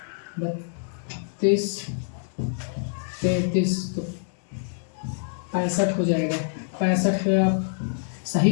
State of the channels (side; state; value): right; silent; digital silence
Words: 32 33 तो 65 हो जाएगा। 65 में आप सही